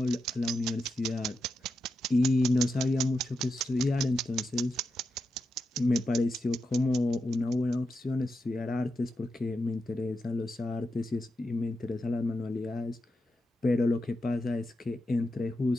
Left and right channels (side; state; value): both; normal; correlation 0.87